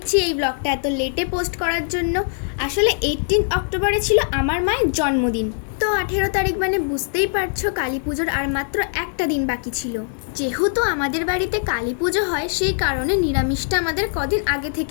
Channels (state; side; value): silent; right; 65 dB below the other